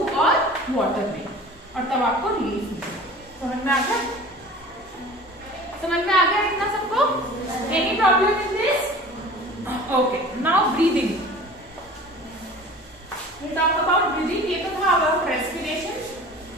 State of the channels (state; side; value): normal; both; correlation 0.42